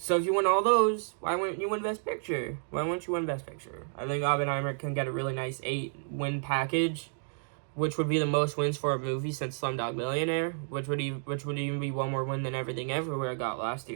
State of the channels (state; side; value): silent; left; 57 dB below the other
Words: if you win all those, why wouldn't you win Best Picture? Why wouldn't you win Best Picture? I think Oppenheimer can get a really nice 8-win package, which would be the most wins for a movie since Slumdog Millionaire, which would even be one more win than Everything Everywhere got last